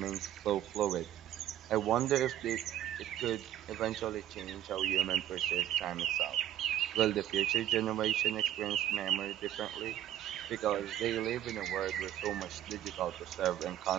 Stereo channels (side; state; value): left; quieter; 11.9 dB